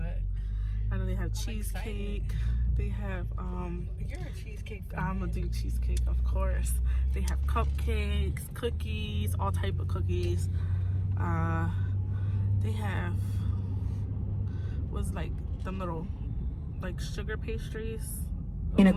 I know they have cheesecake. They have you're a cheesecake fan. I'm gonna do cheesecake, of course. They have cupcakes, cookies, all type of cookies. They have what's like them little like sugar pastries. In a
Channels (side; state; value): both; identical; correlation 1.00